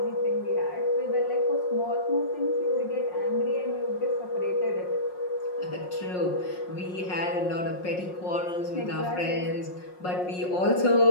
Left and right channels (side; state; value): right; late; 5.5 ms